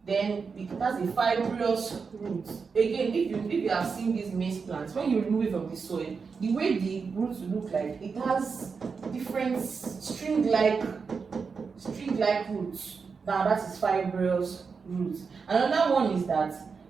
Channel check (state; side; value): quieter; left; 5.3 dB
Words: Then it has a fibrous root. Again, if you have seen these maize plants, when you remove it from the soil, the way the roots look like, it has different string-like roots. Now that is fibrous roots. Another one is that